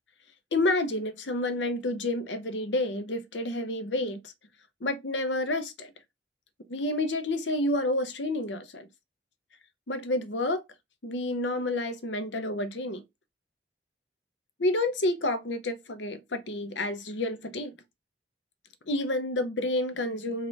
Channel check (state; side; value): normal; both; correlation 0.14